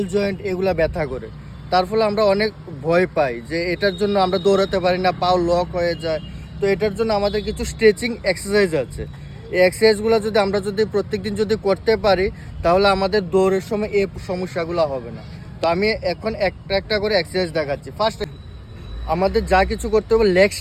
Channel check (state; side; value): identical; both; correlation 1.00